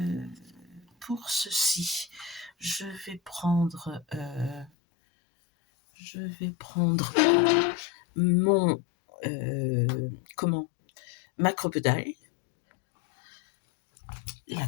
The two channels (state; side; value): drops out; right; at 4.7 s